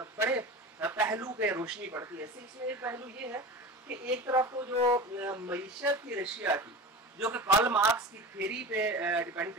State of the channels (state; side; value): normal; both; correlation 0.32